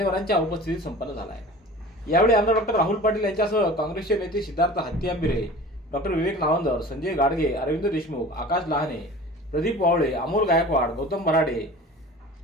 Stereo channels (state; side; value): normal; both; correlation 0.40